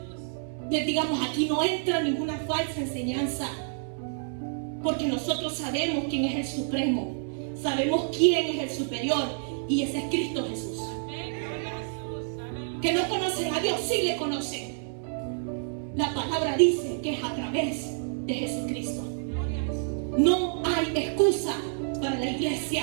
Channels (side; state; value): left; silent; 59 dB below the other